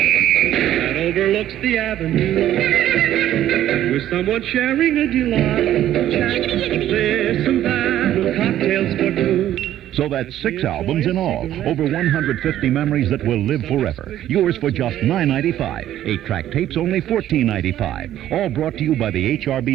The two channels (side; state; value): left; quieter; 12.3 dB